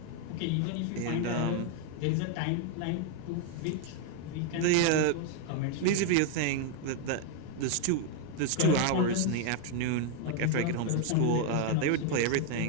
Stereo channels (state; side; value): different; both; correlation 0.00